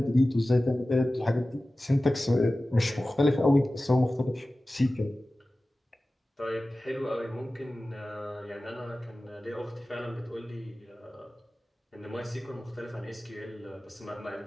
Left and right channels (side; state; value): both; normal; correlation 0.96